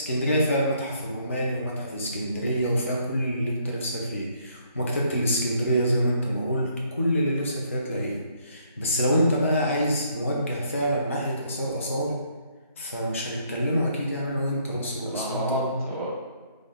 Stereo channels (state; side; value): inverted; both; correlation -0.68